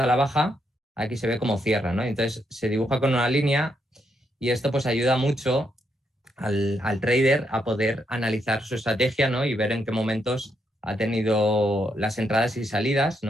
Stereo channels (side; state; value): both; normal; correlation 0.78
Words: a la baja, aquí se ve cómo cierra, ¿no? Entonces se dibuja con una línea y esto pues ayuda mucho al trader a poder analizar su estrategia, ¿no? Y ver en qué momentos ha tenido las entradas y salidas,